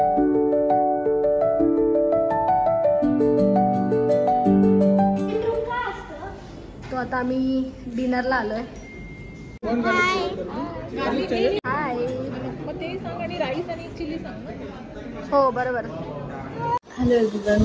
तो आता आम्ही डिनरला आलोय. हाय. राईस आणि चिली सांग. हो बरोबर. हॅलो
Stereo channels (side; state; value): both; identical; correlation 1.00